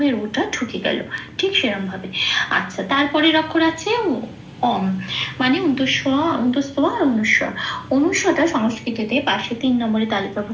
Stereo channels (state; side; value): identical; both; correlation 1.00